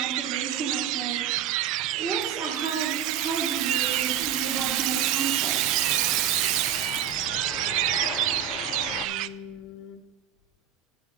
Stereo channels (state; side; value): quieter; left; 9.9 dB